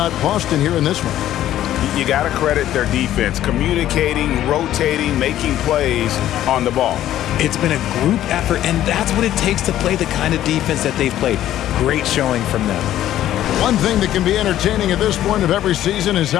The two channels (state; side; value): quieter; right; 12.6 dB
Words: Boston here in this one? You got to credit their defense, communicating, rotating, making plays on the ball. It's been a group effort, and that's what it takes to play the kind of defense that they've played. Great showing from them. One thing that can be entertaining at this point of every season is